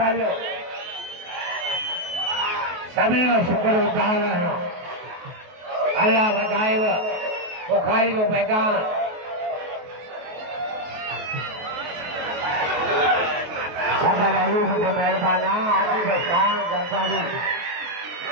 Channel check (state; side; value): late; left; 23 ms